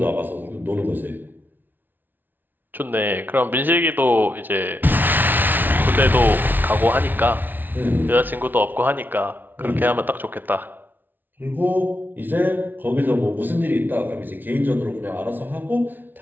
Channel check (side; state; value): left; late; 0.089 ms